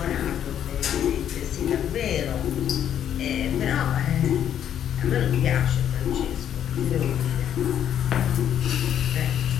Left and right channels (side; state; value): right; quieter; 9.9 dB